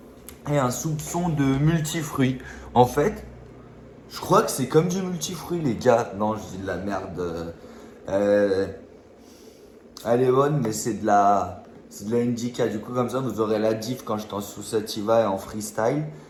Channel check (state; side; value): identical; both; correlation 1.00